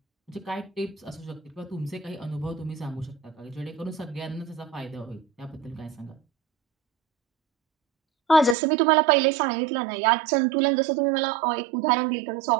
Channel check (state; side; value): drops out; left; at 8.6 s